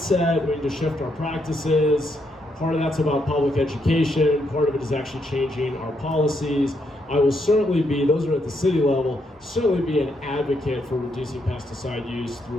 we need to shift our practices. Part of that's about public education, part of it is actually changing our policies. I will certainly be, those are at the city level, certainly be an advocate for reducing pesticide use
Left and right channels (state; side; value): normal; both; correlation 0.77